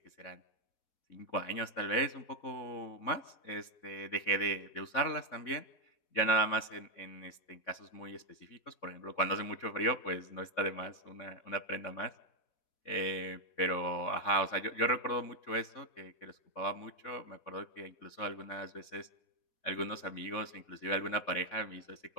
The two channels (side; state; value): right; late; 4.1 ms